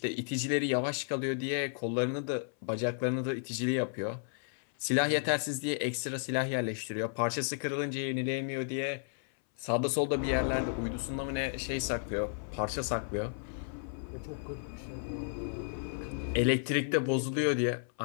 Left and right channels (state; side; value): silent; right; 56 dB below the other